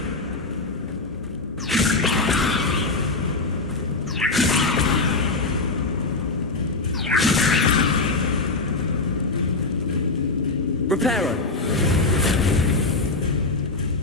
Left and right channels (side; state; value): right; quieter; 3.5 dB